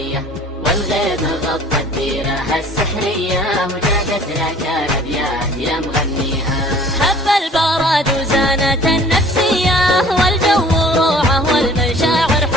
والغيم غطت ديرها السحرية، وجادت لك الأبيات يا مغنيها. هب البراد وزانت النفسية، والجو روعة والمشاعر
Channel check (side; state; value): both; normal; correlation 0.50